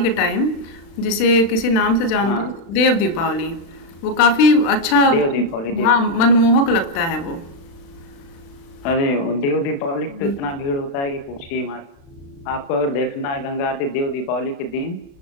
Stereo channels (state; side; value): late; right; 36 ms